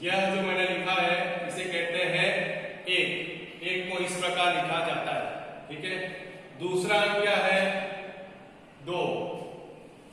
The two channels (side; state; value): both; identical; correlation 1.00